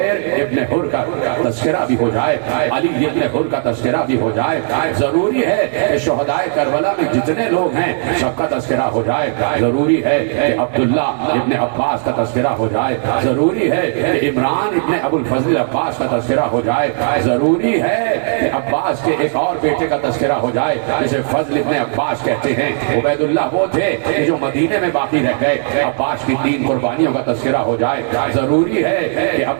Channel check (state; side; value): silent; left; 69 dB below the other